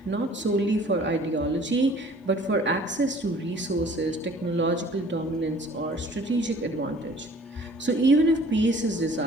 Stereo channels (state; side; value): normal; both; correlation 0.52